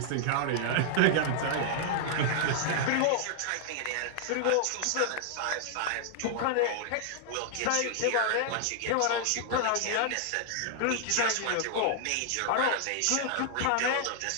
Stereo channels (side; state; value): both; different; correlation 0.00